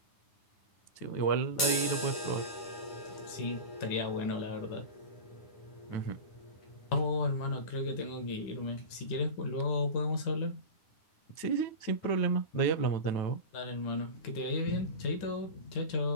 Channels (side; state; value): right; late; 9.8 ms